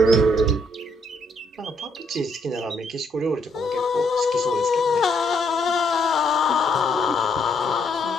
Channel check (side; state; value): both; normal; correlation 0.72